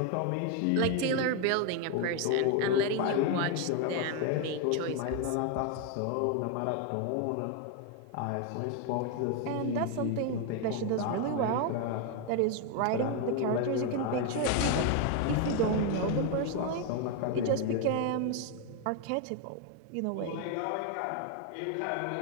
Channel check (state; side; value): different; both; correlation 0.01